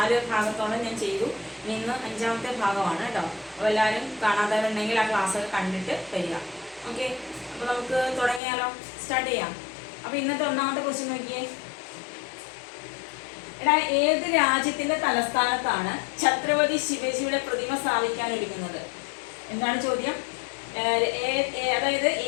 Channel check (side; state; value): right; drops out; at 8.4 s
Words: ഭാഗത്തോളം ഞാൻ ചെയ്തു. ഇന്ന് 5ാമത്തെ ഭാഗമാണ് കേട്ടോ. അപ്പോൾ എല്ലാവരും കാണാത്തവരുണ്ടെങ്കിൽ ആ ക്ലാസ്സൊക്കെ കണ്ടിട്ട് വരിക. ഓക്കെ, അപ്പോൾ നമുക്ക് തുടങ്ങിയാലോ, സ്റ്റാർട്ട് ചെയ്യാം. അപ്പോൾ ഇന്നത്തെ ഒന്നാമത്തെ ക്വസ്റ്റ്യൻ നോക്കിയേ. ഏത് രാജ്യത്തിന്റെ തലസ്ഥാനത്താണ് ഛത്രപതി ശിവജിയുടെ പ്രതിമ സ്ഥാപിക്കാൻ ഒരുങ്ങുന്നത്? എന്താണ് ചോദ്യം? അതായത്